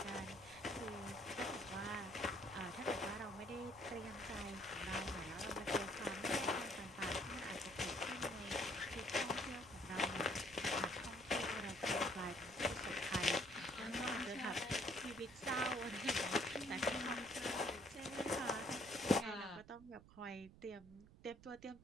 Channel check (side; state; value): right; noise; rumble, 20 dB below the sound